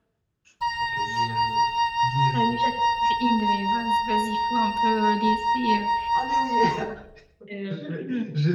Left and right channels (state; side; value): identical; both; correlation 1.00